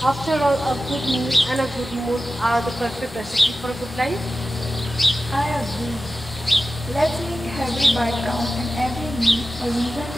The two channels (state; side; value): normal; both; correlation 0.94